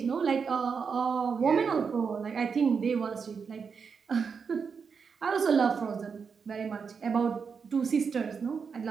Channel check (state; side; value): quieter; left; 5.9 dB